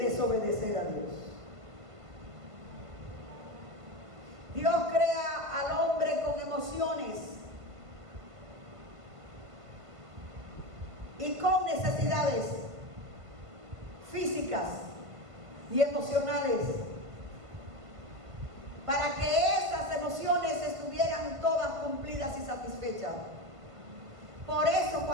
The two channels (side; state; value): left; late; 1.4 ms